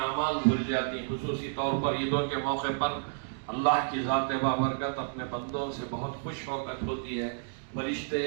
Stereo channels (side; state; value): left; silent; digital silence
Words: اعمال دھل جاتی ہیں، خصوصی طور پر عیدوں کے موقع پر اللہ کی ذات بابرکت اپنے بندوں سے بہت خوش ہوتی ہے۔ فرشتے،